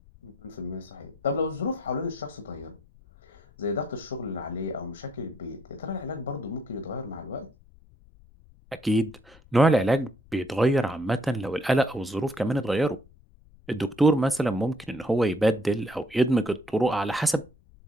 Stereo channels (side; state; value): left; noise; rumble, 25 dB below the sound